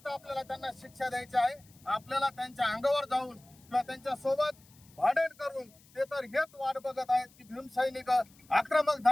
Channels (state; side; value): noise; left; hiss, 27 dB below the sound